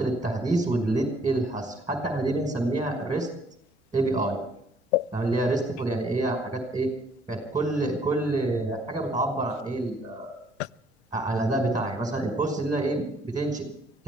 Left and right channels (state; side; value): normal; both; correlation 0.64